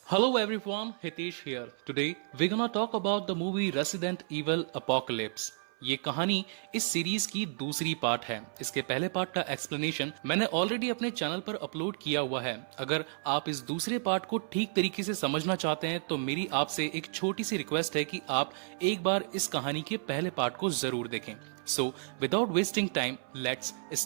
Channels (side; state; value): left; silent; 56 dB below the other